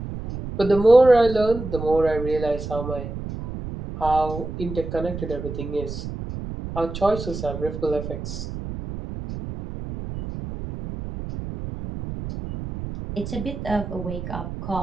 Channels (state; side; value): noise; right; rumble, 8 dB below the sound